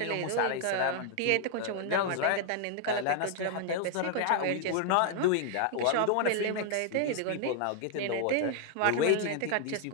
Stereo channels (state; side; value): different; both; correlation 0.00